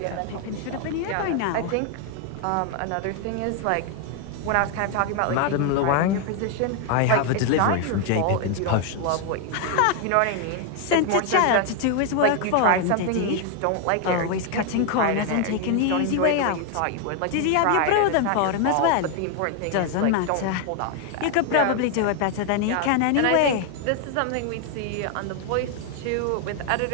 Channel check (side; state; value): both; different; correlation 0.00